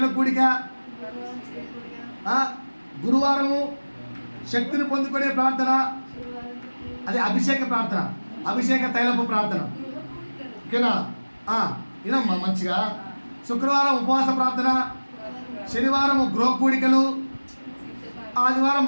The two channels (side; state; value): both; inverted; correlation -1.00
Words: కూడిక, గురువారము శక్తిని పొందుకునే ప్రార్థన, అది అభిషేక ప్రార్థన, అభిషేక తైలపు ప్రార్థన, ఓకేనా. వినమ్మా మంచిగా. శుక్రవారం ఉపవాస ప్రార్థన, శనివారం గృహ కూడికలు, ఆదివారం